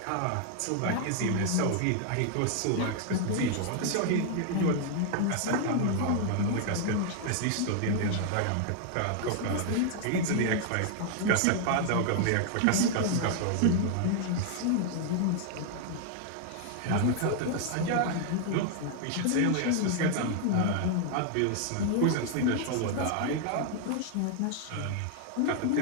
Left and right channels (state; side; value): different; both; correlation 0.00